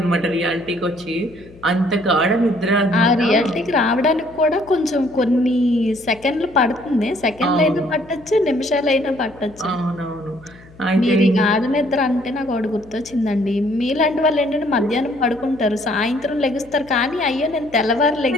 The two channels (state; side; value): noise; left; hum, 23 dB below the sound